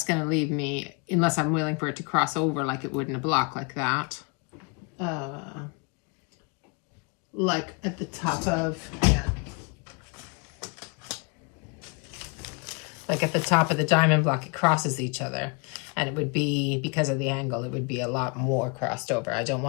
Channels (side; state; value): right; quieter; 32.2 dB